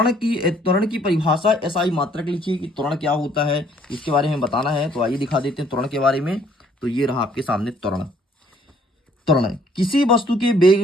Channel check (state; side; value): normal; both; correlation 0.62